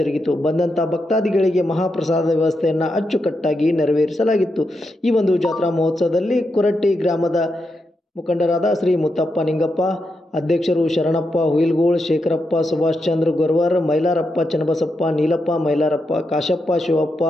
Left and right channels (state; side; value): normal; both; correlation 0.85